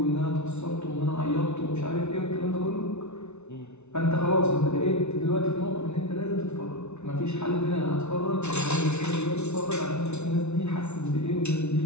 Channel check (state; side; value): late; right; 0.81 ms